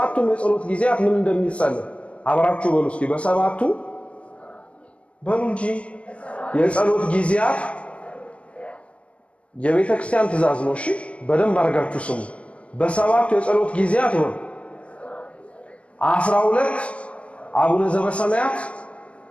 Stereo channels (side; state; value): right; late; 0.062 ms